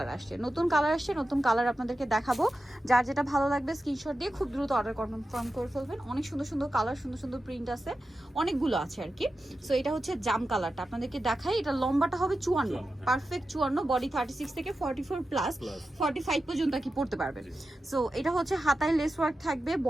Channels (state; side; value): normal; both; correlation 0.92